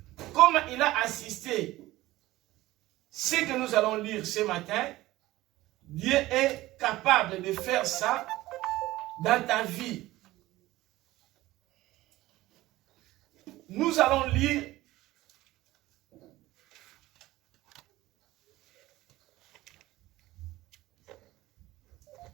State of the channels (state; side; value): quieter; left; 17.3 dB